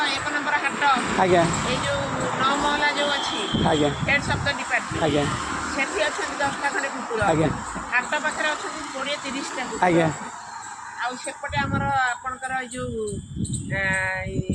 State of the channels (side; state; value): both; identical; correlation 1.00